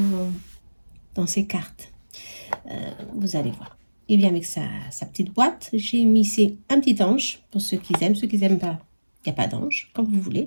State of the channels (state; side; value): inverted; both; correlation -1.00